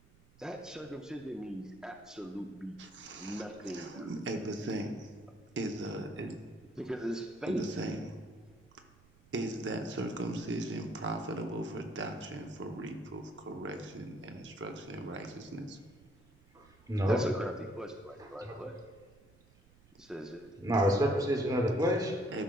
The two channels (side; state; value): right; noise; rumble, 27 dB below the sound